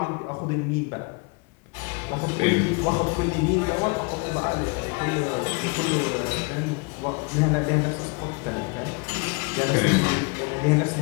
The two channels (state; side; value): quieter; right; 29.3 dB